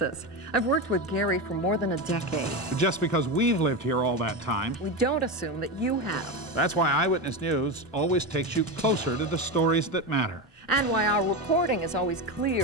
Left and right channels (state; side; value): normal; both; correlation 0.17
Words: I've worked with Gary for more than a decade. Just because we've lived here all that time, We don't assume that you have. that's why Eyewitness News always takes you closer to the stories that matter. And why our reporting is always